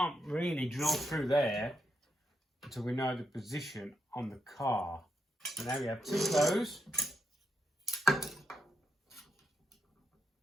really drill through there until we know the position on the car. So now we have two of those.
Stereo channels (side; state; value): both; normal; correlation 0.83